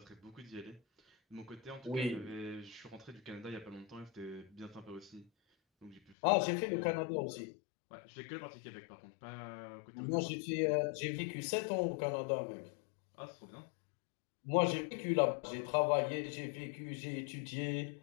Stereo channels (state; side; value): drops out; right; at 6.2 s